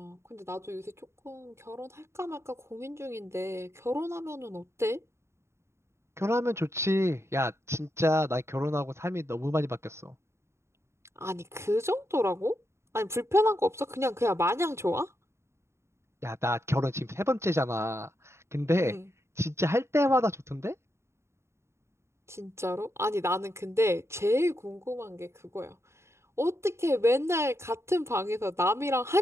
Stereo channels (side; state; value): left; late; 0.13 ms